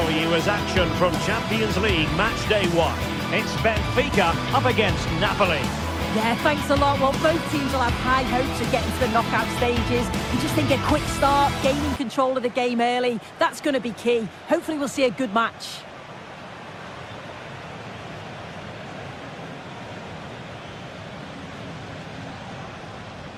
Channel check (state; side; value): identical; both; correlation 1.00